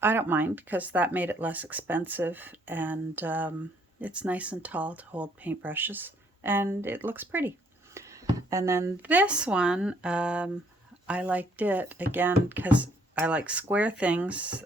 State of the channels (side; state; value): both; normal; correlation 0.66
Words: I don't mind because that made it less expensive, and it's nice and tall to hold paintbrushes, and it looks pretty. And then this one, I liked it again because I like square things.